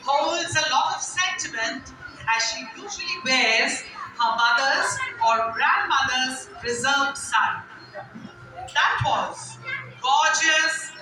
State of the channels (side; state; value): both; identical; correlation 1.00